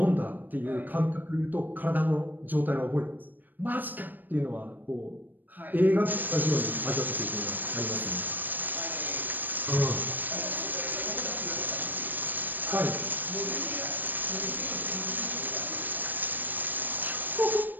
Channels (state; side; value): late; left; 0.089 ms